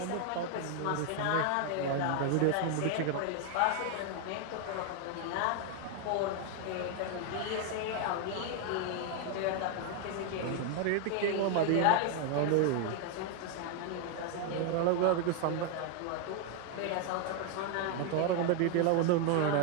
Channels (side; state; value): both; different; correlation 0.01